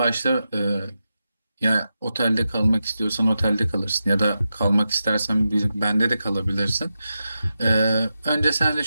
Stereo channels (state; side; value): inverted; both; correlation -0.90